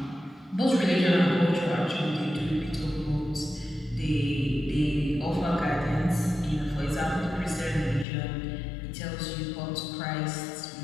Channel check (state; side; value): drops out; right; at 8.1 s